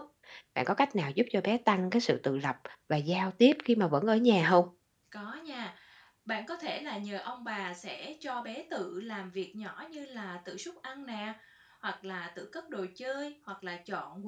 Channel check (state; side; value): identical; both; correlation 1.00